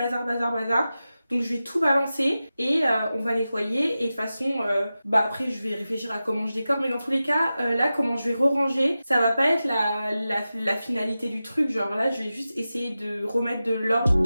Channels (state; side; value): inverted; both; correlation -0.94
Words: Donc je vais tout balancer et on va nettoyer, et de toute façon après je vais réfléchir à comment je décore, mais dans tous les cas là comment je vais re-ranger, ça va pas être la finalité du truc, genre là je vais juste essayer de remettre de l'ordre.